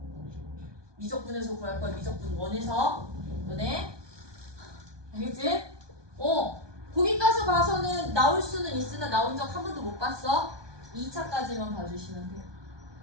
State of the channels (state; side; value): late; left; 1.2 ms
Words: 미적분에서 구할 거야. 미적분 1에서. 너네? 알겠지? 거기까지 봐서는 나올 수는 있으나 나온 적 한 번도 못 봤어. 2차까지만 봐주시면 돼요.